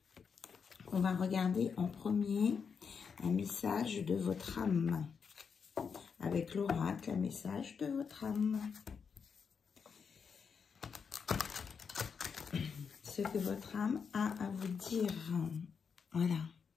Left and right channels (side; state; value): right; quieter; 6.1 dB